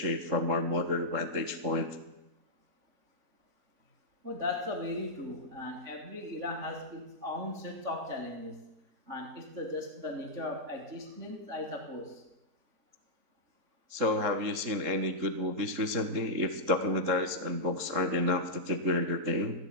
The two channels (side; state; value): left; late; 3.7 ms